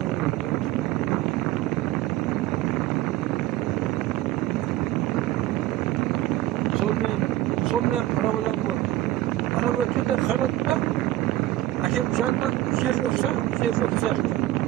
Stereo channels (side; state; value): left; quieter; 15.3 dB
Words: Сонымен проблем бар. Ана өткенде қарадым да, әкем жанынан жер жоқса, жер жоқ сияқты.